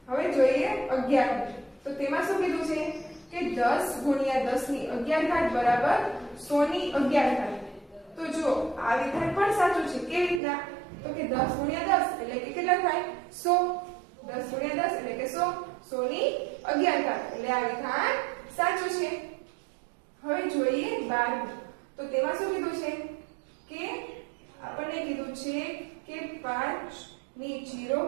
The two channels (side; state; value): left; drops out; at 10.4 s